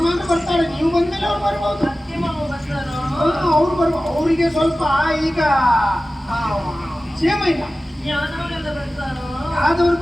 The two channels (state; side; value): normal; both; correlation 0.96